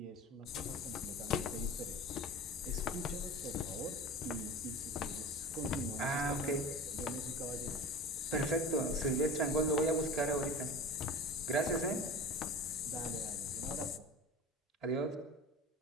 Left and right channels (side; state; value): both; normal; correlation 0.35